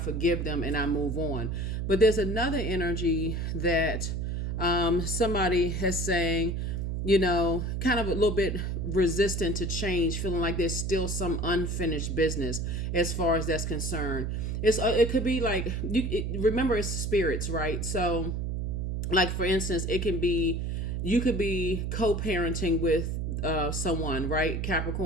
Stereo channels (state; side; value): noise; right; hum, 1 dB below the sound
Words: them and I move on. But there's another energy that somebody has saying, kind of a little bit resistant to change, feeling like there's still some unfinished business as far as that's concerned. It could be like, remember it's spirits, right? So like, for instance, you could be co-parenting with someone, right?